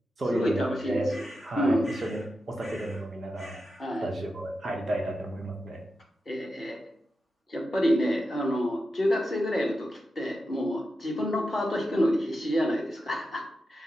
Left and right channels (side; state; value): both; normal; correlation 0.89